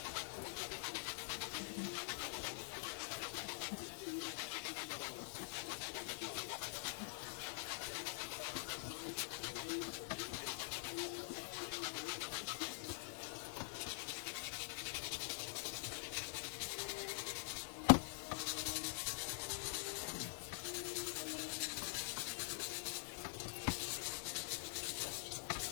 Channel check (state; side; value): silent; right; digital silence